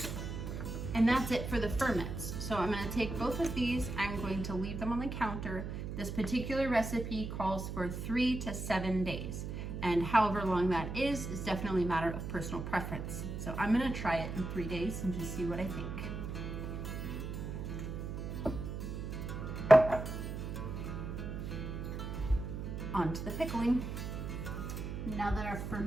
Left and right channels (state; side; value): noise; right; hum, 5 dB below the sound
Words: And that's it for the ferments. So I'm gonna take both of these, I'm going to leave them on the counter. This particular recipe calls for 3 to 7 days. And however long that is definitely a matter of personal preference. So I'm gonna try it in 3 days and just see what I think. On to the pickling. Now that our